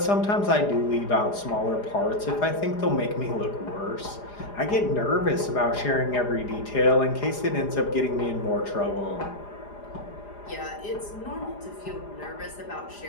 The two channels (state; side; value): late; right; 4.9 ms